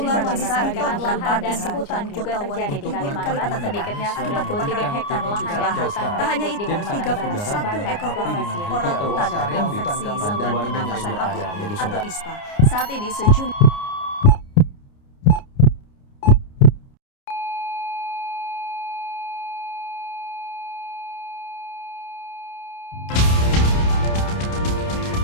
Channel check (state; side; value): late; right; 29 ms